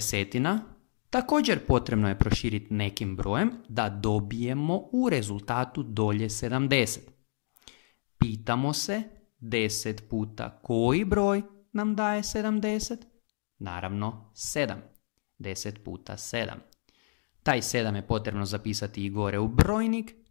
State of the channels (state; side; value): silent; right; digital silence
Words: također potrebno je proširiti nekim brojem da dobijemo u rezultatu dolje 70. Pitamo se 10 puta koji broj nam daje 70? Naravno 7. 10 puta 7. Taj 7 je potrebno zapisati i gore u brojnik,